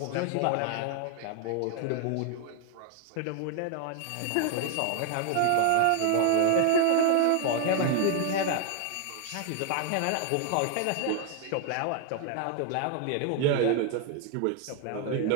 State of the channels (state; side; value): different; both; correlation 0.00